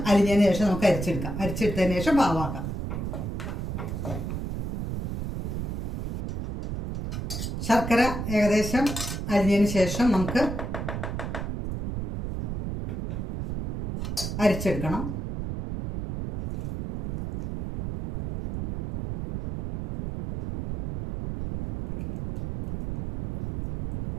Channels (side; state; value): right; noise; rumble, 4 dB below the sound